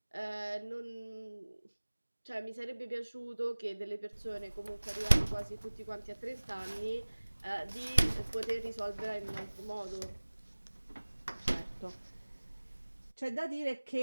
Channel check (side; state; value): both; inverted; correlation -1.00